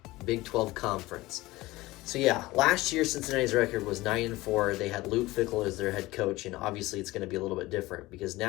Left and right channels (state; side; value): quieter; right; 19.3 dB